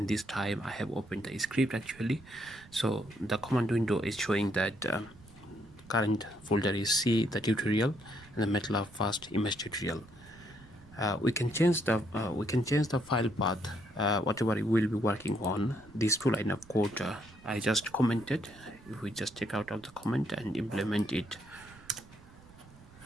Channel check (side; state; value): right; noise; rumble, 22 dB below the sound